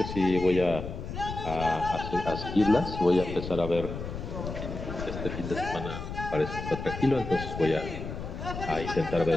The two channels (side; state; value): left; noise; rumble, 7 dB below the sound